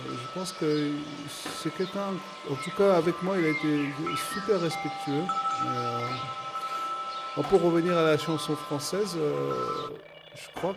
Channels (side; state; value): both; identical; correlation 1.00